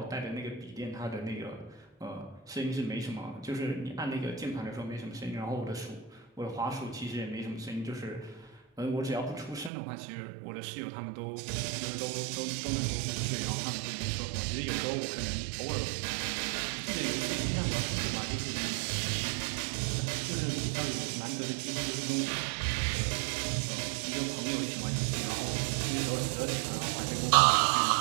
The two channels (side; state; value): left; drops out; at 9.7 s